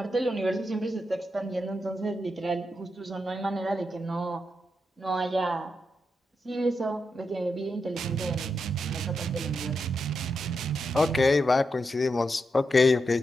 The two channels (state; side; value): normal; both; correlation 0.85